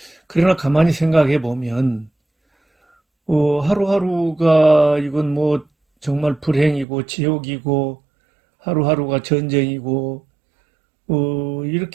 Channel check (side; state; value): left; drops out; at 6.9 s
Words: 그러나 가만히 생각해 보면 하루하루가 이건 뭐 정말 불행이고 지옥이고 하루하루가 전쟁이고